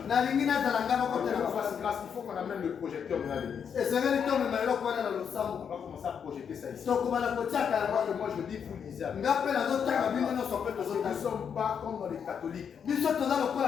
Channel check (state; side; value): quieter; right; 7.4 dB